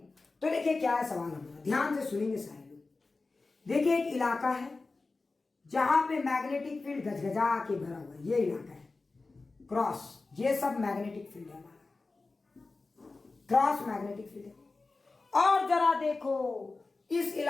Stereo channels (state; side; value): quieter; right; 3.7 dB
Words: तो देखिए क्या है सवाल हमारा, ध्यान से सुनेंगे सारे लोग। देखिए एक इलाका है जहां पे मैग्नेटिक फील्ड गजगजा के भरा हुआ है, ये इलाका है क्रॉस, ये सब मैग्नेटिक फील्ड है हमारा, क्रॉस मैग्नेटिक फील्ड है। और जरा देखो इस